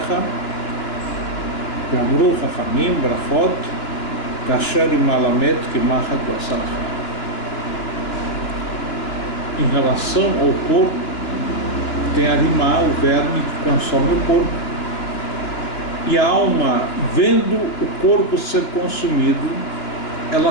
Gamru Chachamim Brachot Kasher Imalamet Kimachat Basarcha. Em relação ao corpo, tem Arimá, o verme que consome o corpo, e a alma, vendo o corpo ser consumido,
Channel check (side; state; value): right; late; 2.9 ms